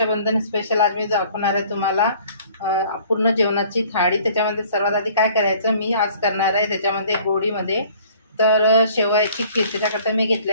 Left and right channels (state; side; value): inverted; both; correlation -0.53